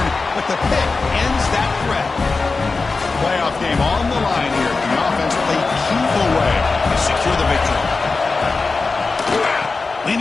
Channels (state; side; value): quieter; right; 4.0 dB